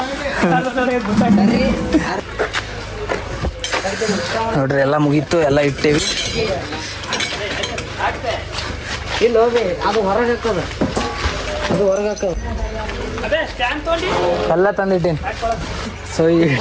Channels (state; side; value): identical; both; correlation 1.00